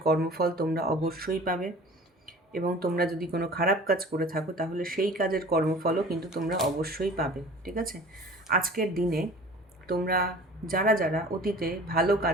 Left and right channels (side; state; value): both; normal; correlation 0.44